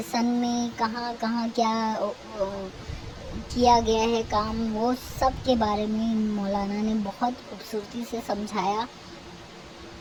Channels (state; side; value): identical; both; correlation 1.00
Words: सन में कहाँ कहाँ क्या किया गया है काम, वो सब के बारे में मौलाना ने बहुत खूबसूरती से समझाया।